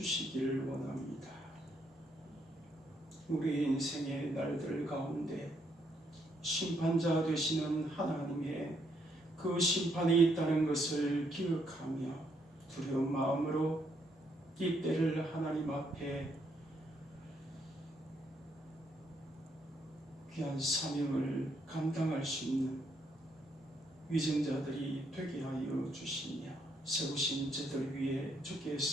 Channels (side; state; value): both; normal; correlation 0.73